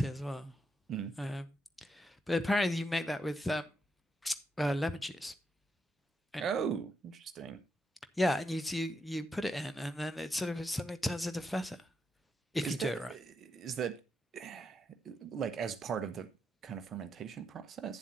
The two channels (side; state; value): both; normal; correlation 0.82